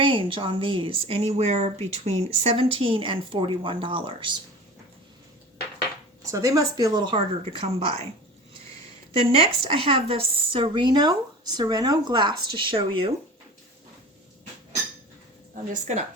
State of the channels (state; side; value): normal; both; correlation 0.37